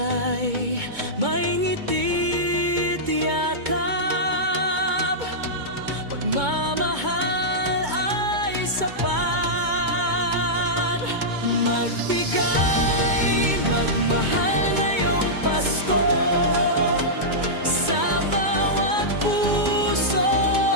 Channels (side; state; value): left; late; 2.2 ms